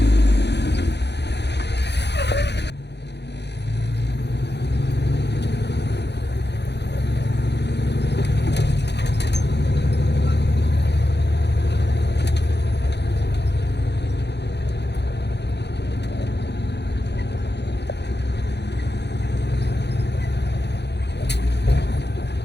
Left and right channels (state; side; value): late; right; 0.50 ms